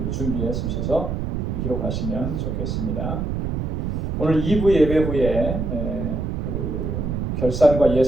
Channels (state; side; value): noise; right; rumble, 2 dB below the sound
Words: 준비해 주셔서 기록하시면 좋겠습니다. 오늘 2부 예배 후에 그 결산과